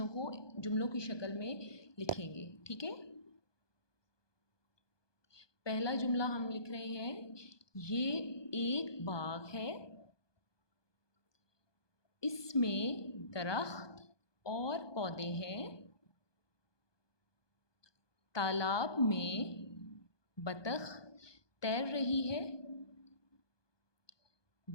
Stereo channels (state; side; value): late; right; 1.2 ms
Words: को जुमलों की शक्ल में लिखेंगे। ठीक है, पहला जुमला हम लिख रहे हैं, ये एक बाग है, इसमें दरख्त और पौधे हैं, तालाब में बतख तैर रही है,